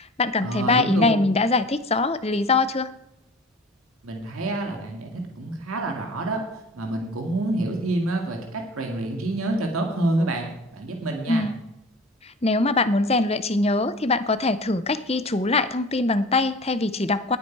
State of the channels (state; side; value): normal; both; correlation 0.41